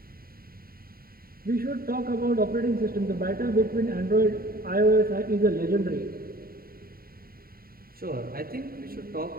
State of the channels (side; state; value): left; late; 0.43 ms